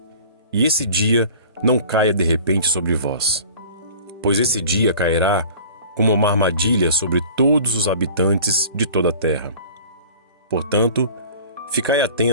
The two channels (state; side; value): inverted; both; correlation -0.44